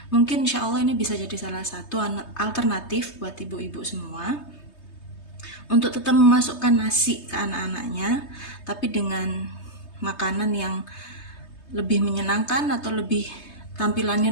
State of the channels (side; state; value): right; late; 3.2 ms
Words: mungkin insya Allah ini bisa jadi salah satu alternatif buat ibu-ibu semua untuk tetap memasukkan nasi ke anak-anaknya, tapi dengan makanan yang lebih menyenangkan atau lebih tampilannya